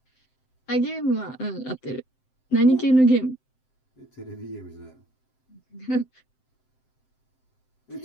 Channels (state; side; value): late; right; 7.7 ms